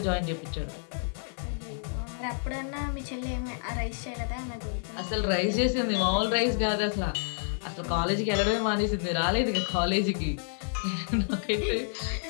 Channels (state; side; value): silent; right; digital silence